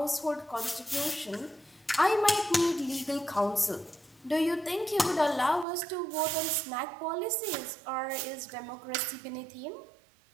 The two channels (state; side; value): drops out; left; at 5.7 s